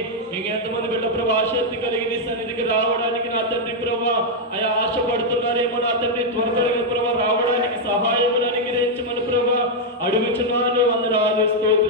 ఇంకెంతమంది బిడ్డ ప్రభా ఆసక్తి కలిగి నీ సన్నిధికి రావడానికి నా తండ్రి ప్రభా అయా ఆశపడుతున్నారేమో నా తండ్రి త్వరగా ప్రభా రావడానికి సహాయమును అనుగ్రహించమని ప్రభా అడుగుచున్నాను. వందనాలు,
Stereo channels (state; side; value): normal; both; correlation -0.01